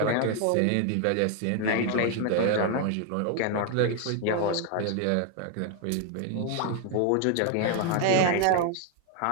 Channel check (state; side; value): different; both; correlation 0.01